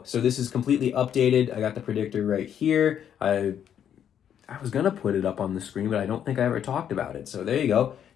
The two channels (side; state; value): right; quieter; 9.2 dB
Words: so this is completely updated. I got the predictor right here. I was going to put it up on the screen, but I don't think I ever talked about it. So there you go.